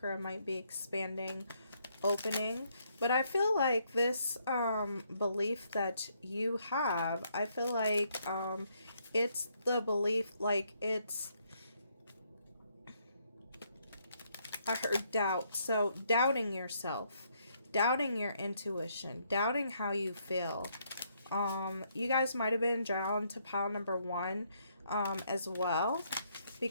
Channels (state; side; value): inverted; both; correlation -0.72